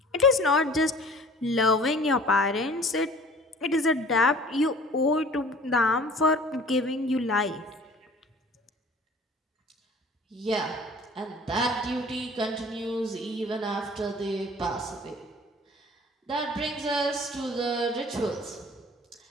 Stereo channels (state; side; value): normal; both; correlation 0.48